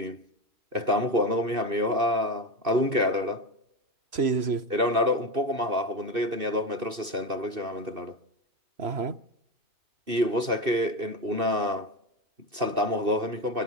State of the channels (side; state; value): left; late; 2.6 ms